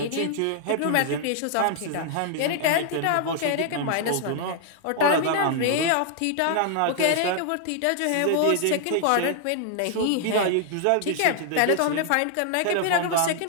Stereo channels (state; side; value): different; both; correlation 0.00